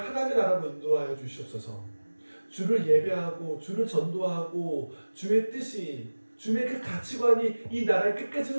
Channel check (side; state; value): both; inverted; correlation -1.00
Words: 나라로 인도하여 주시옵소서. 주를 예배하고 주를 전도하고 주의 뜻이, 주의 그 가치관이 이 나라에 끝까지